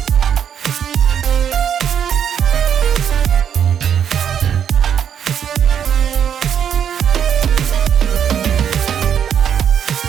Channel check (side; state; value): left; quieter; 8.5 dB